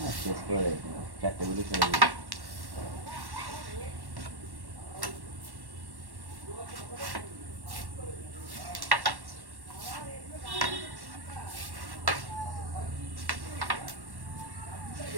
শেষ করে 4টে গুলি চলে যাবে।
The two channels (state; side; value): late; left; 1.1 ms